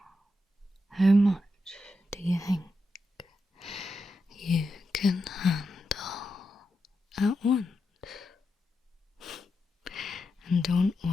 how much do you think you can handle at once? And don't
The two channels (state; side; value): normal; both; correlation 0.87